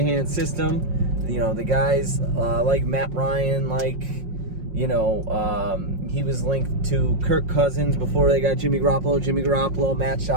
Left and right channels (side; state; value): left; late; 5.5 ms